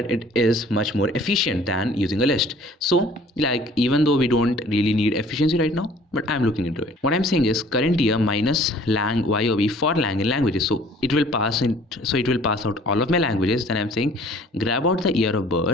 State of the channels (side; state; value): both; normal; correlation 0.53